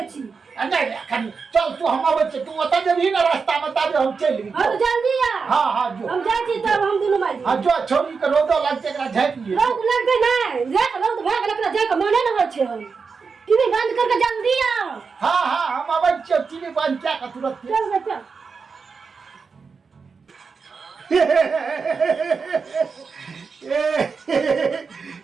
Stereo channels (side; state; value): left; quieter; 5.2 dB